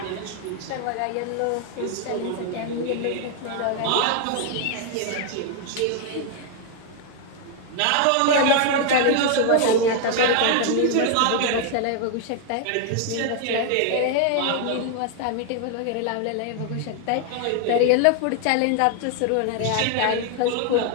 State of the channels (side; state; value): both; different; correlation 0.00